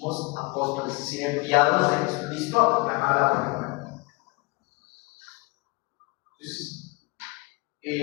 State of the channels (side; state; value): right; quieter; 27.6 dB